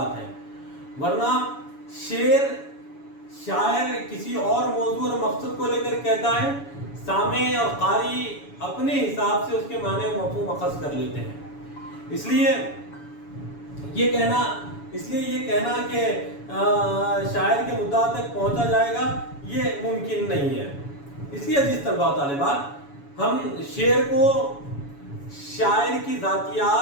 ہے، ورنہ شاعر کسی اور موضوع اور مقصد کو لے کر کہتا ہے، سامع اور قاری اپنے حساب سے اس کے معنی و مفہوم اخذ کر لیتے ہیں۔ اس لیے یہ کہنا کہ شاعر کے مدعا تک پہنچا جائے گا یہ ممکن نہیں ہے۔ اس لیے عزیز طلباء و طالبات، ہم شعر کو شاعر کی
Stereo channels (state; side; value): late; right; 7.1 ms